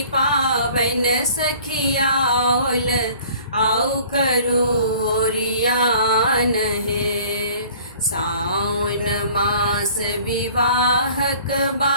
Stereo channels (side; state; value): both; inverted; correlation -0.51